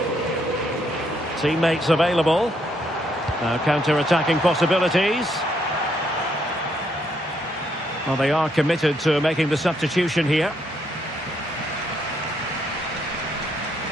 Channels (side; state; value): both; normal; correlation 0.73